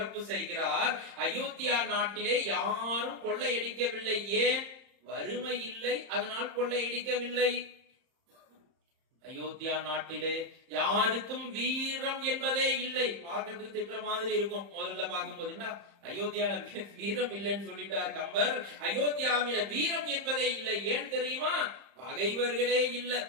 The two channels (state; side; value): late; left; 30 ms